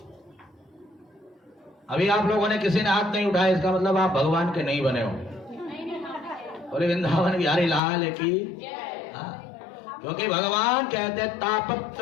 अभी आप लोगों ने किसी ने हाथ नहीं उठाया, इसका मतलब आप भगवान के नहीं बने हो। और वृंदावन बिहारी लाल की, क्योंकि भगवान कहते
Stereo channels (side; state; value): right; drops out; at 7.8 s